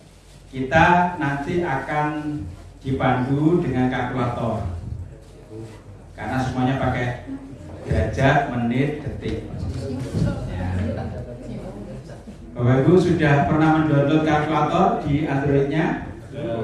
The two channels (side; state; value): both; identical; correlation 1.00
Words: kita nanti akan dipandu dengan kalkulator, karena semuanya pakai derajat, menit, detik. Ya. Bapak Ibu sudah pernah mendownload kalkulator di Android-nya?